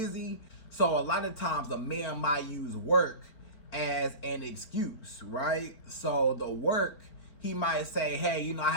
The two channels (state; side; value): late; right; 4.4 ms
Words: So a lot of times a man might use work as an excuse, right? So the work, he might say, hey, you know, I